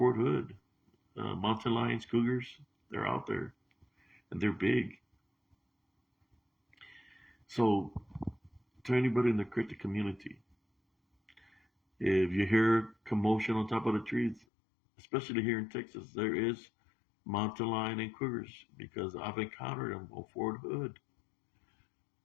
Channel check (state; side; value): drops out; right; at 14.5 s